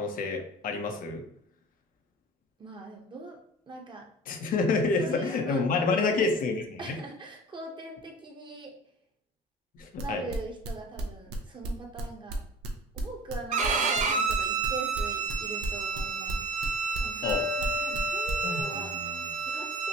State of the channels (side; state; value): both; normal; correlation 0.41